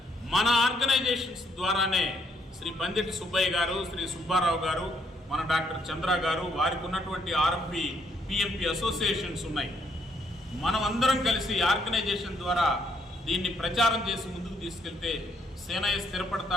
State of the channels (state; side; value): normal; both; correlation 0.71